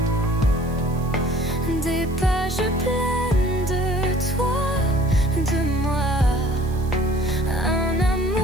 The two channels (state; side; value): noise; right; hiss, 23 dB below the sound